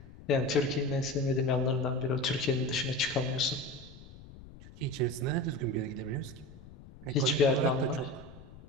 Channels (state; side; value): noise; left; rumble, 18 dB below the sound